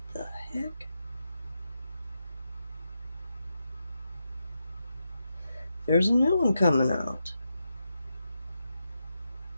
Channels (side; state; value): both; inverted; correlation -0.86